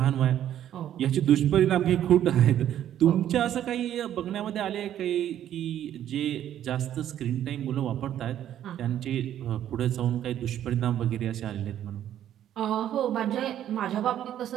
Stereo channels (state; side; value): quieter; left; 11.1 dB